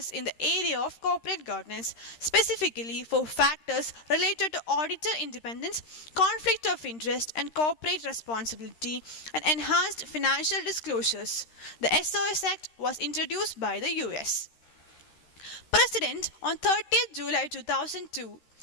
in the area of corporate governance, specifically for factors related to auditor independence, conflict of interest, and corporate responsibility, and enhanced financial disclosures. The SOX Act was introduced by the US President on 30th July 2002.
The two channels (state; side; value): late; right; 13 ms